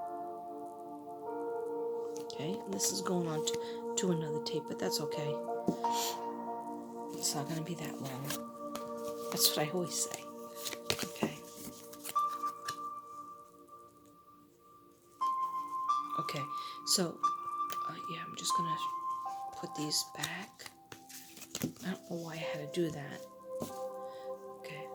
Okay, and this is going on to another tape, but that's okay. It's not going to be that long. That's what I always say. Okay. Okay, so, yeah, I'm just going to put these back. I don't know why I had to do that. Okay,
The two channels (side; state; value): both; identical; correlation 1.00